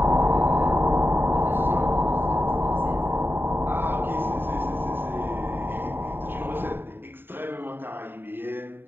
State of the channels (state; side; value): late; left; 0.098 ms